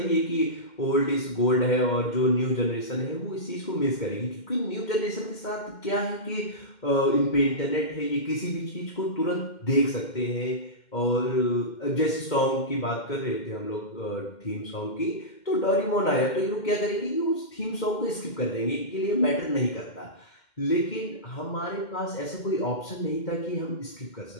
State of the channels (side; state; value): right; late; 2.1 ms